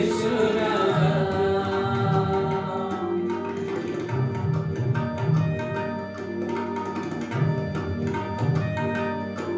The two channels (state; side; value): identical; both; correlation 1.00